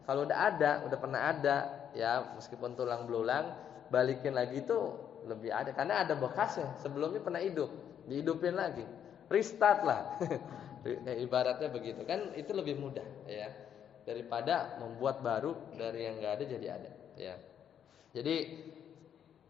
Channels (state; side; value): quieter; right; 9.0 dB